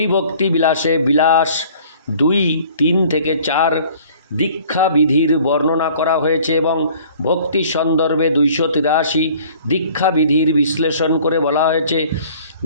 বিলাসে বিলাস 2:3-4 দীক্ষা বিধির বর্ণনা করা হয়েছে এবং ভক্তি সন্দর্ভে 283 দীক্ষা বিধির বিশ্লেষণ করে বলা হয়েছে।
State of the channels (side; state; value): both; inverted; correlation -0.52